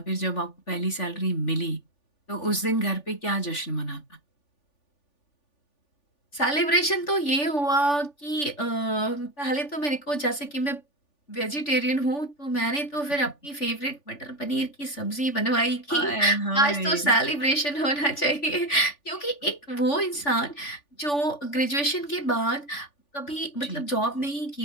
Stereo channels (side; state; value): right; late; 3.5 ms